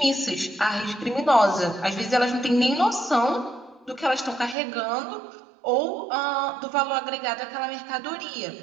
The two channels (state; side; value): drops out; left; at 4.5 s